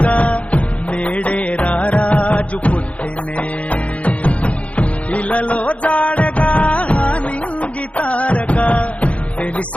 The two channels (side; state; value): right; late; 0.064 ms